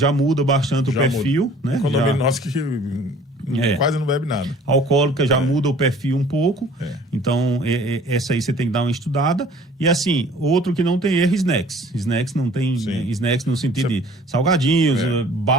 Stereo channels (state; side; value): normal; both; correlation 0.51